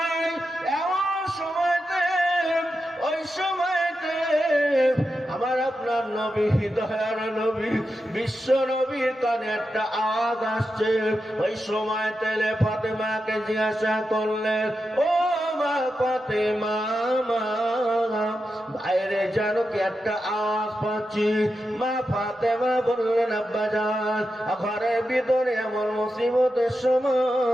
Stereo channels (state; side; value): normal; both; correlation 0.89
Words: এমন সময়তে, ওই সময়তে আমার আপনার নবী, দয়ার নবী, বিশ্ব নবীর কানে একটা আওয়াজ আসছে। ওই সময় তেলে ফাতেমাকে জিজ্ঞাসা করলেন, ও মা ফাতেমা মা, বাইরে যেন কি একটা আওয়াজ পাচ্ছি। মা ফাতেমা বললেন আব্বাজান, ঘরের ভিতরে এমন মুসিবতের